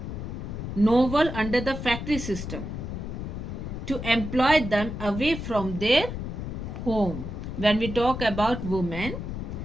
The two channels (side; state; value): left; noise; rumble, 6 dB below the sound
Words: novel under the factory system to employ them away from their home. When we talk about women,